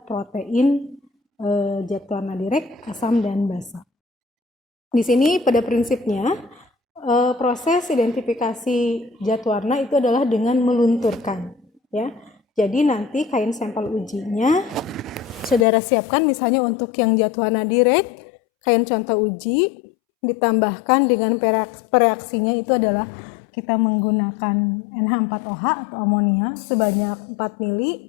protein zat warna direct, asam, dan basa. Di sini pada prinsipnya proses identifikasi zat warna itu adalah dengan melunturkan, ya. Jadi nanti kain sampel ujinya saudara siapkan, misalnya untuk yang zat warna direct, kain contoh uji ditambahkan dengan pereaksinya itu adalah kita menggunakan NH4OH atau amonia sebanyak 4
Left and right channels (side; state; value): right; drops out; at 15.7 s